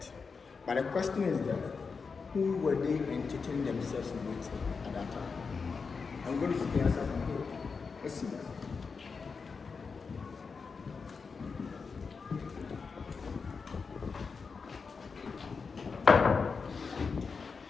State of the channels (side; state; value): right; quieter; 5.1 dB